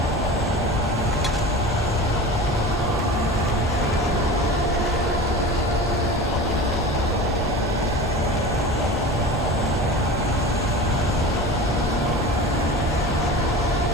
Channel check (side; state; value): both; normal; correlation 0.34